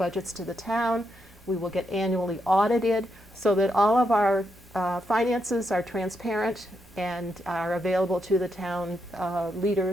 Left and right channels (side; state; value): both; normal; correlation 0.81